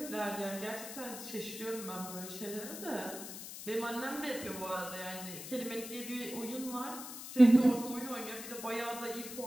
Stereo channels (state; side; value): noise; left; hiss, 10 dB below the sound